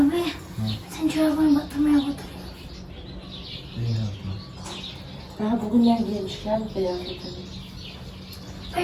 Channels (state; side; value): identical; both; correlation 1.00